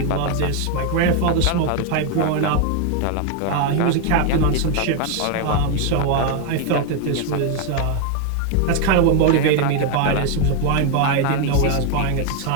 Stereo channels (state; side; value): different; both; correlation 0.01